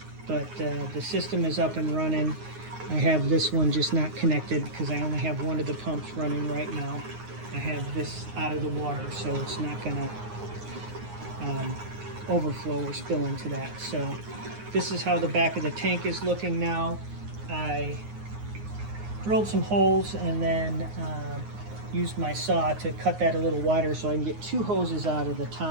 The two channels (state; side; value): late; left; 9.6 ms